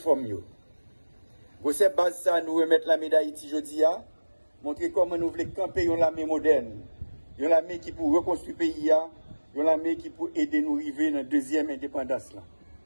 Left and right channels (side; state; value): both; inverted; correlation -1.00